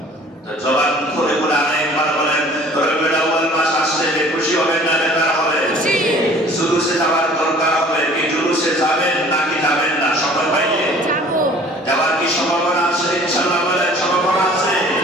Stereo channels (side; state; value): both; normal; correlation 0.50